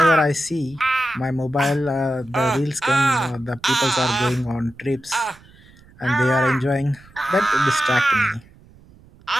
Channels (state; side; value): noise; right; rumble, 26 dB below the sound